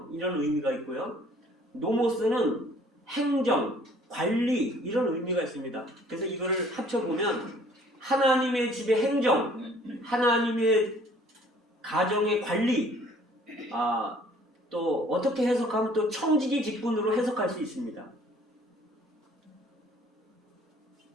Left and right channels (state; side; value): normal; both; correlation 0.56